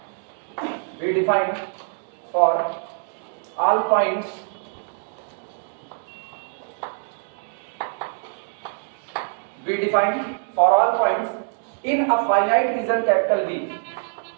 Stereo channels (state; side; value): silent; left; digital silence